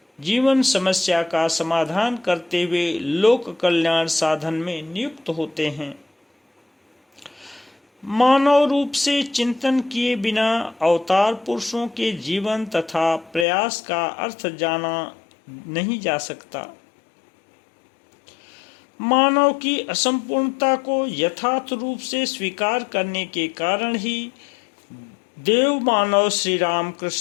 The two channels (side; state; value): right; drops out; at 13.5 s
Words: जीवन समस्या का समाधान करते हुए लोक कल्याण साधन में नियुक्त होते हैं। मानव रूप से चिंतन किए बिना अवतार पुरुषों के जीवन तथा प्रयास का अर्थ जाना नहीं जा सकता। मानव की असंपूर्णता को यथार्थ रूप से स्वीकार करने के कारण ही देव मानव श्री राम